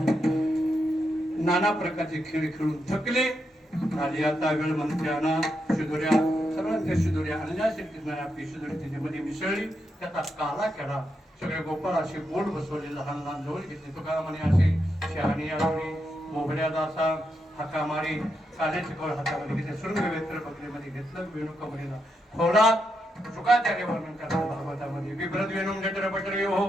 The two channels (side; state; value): both; normal; correlation 0.83